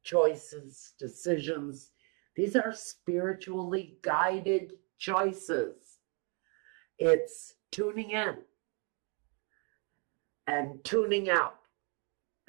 Choices, decisions. These are spiritually guided choices. It's tuning in and tuning out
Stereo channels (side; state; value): left; quieter; 35.5 dB